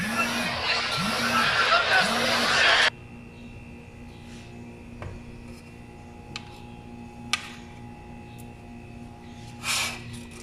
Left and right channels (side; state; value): both; identical; correlation 1.00